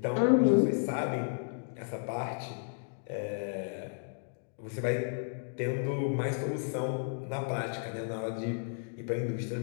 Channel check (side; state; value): right; silent; digital silence